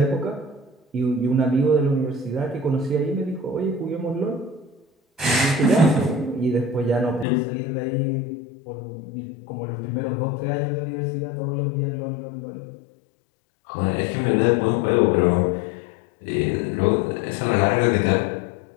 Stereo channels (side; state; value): right; drops out; at 7.2 s